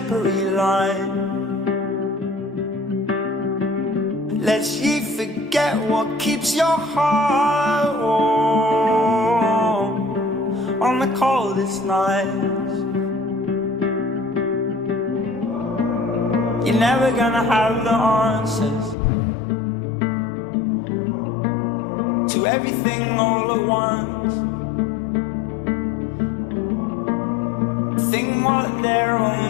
line. Lest ye forget what keeps your heart warm on the coldest nights. You're never gonna have the answers to everything all at once. Think what they're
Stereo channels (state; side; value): drops out; right; at 18.9 s